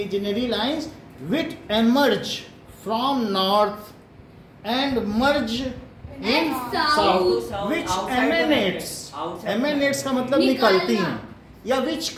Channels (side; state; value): both; identical; correlation 1.00